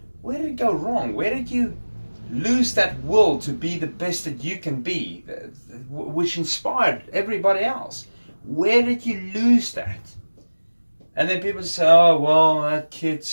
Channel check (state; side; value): inverted; both; correlation -1.00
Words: where did it go wrong? Where did you lose that will to be the best that you can be, which inspired everybody else? Where did you lose that? And then people say, oh, well, that kid